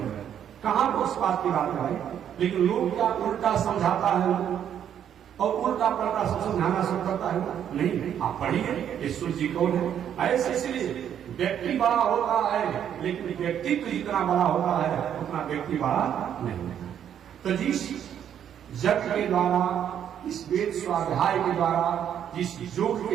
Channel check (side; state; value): left; quieter; 9.4 dB